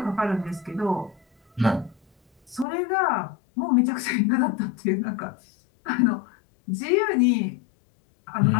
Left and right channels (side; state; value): right; drops out; at 2.7 s